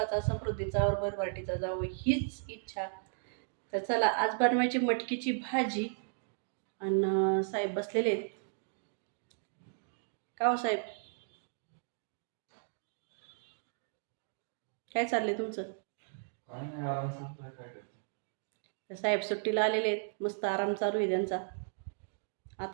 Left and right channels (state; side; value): silent; left; digital silence